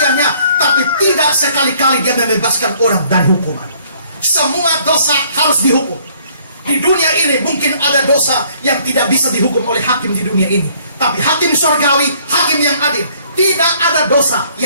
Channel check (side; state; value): both; inverted; correlation -0.61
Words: tapi tidak sekali-kali dia membebaskan orang dari hukuman. Semua dosa harus dihukum. Di dunia ini mungkin ada dosa yang tidak bisa dihukum oleh hakim di dunia ini, tapi hakim surgawi, hakim yang adil, tidak ada dosa